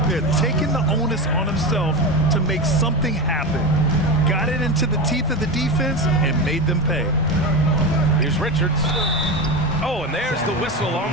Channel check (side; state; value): both; normal; correlation 0.20